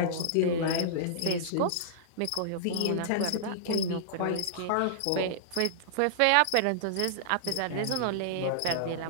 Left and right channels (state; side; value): different; both; correlation -0.02